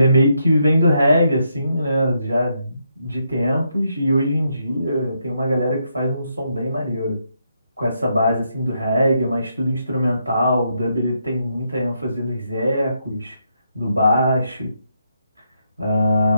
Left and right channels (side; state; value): both; inverted; correlation -0.79